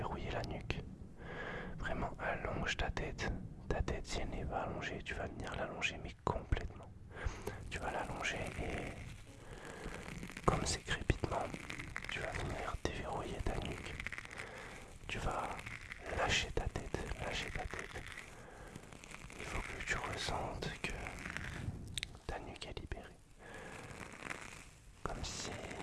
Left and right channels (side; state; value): both; identical; correlation 1.00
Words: la nuque. Vraiment, allonge ta tête. Ta tête, si elle n'est pas allongée, tu vas venir l'allonger, mais complètement. Tu vas l'allonger et, comme c'est crépitement, tu vas venir déverrouiller ta nuque. Tu vas lâcher ta tête, lâcher ta tête. Il faut que tu ressentes que ta nuque est libérée. Comme si